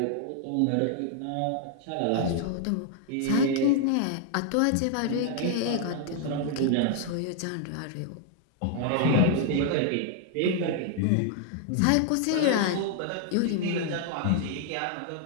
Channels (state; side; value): different; both; correlation 0.00